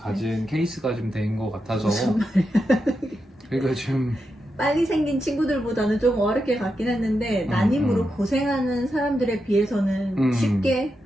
케이스가 좀 된 것 같아서 무슨 말이야. 그러니까 좀 빨리 생긴 친구들보다는 좀 어렵게 갔긴 했는데 난임으로 고생하는 사람들에 비해서는 쉽게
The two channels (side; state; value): both; normal; correlation 0.87